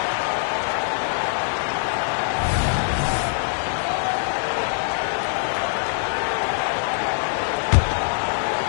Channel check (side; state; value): right; silent; digital silence